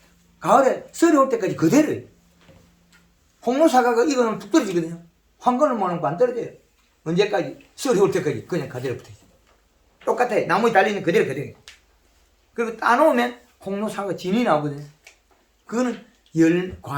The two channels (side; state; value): both; identical; correlation 1.00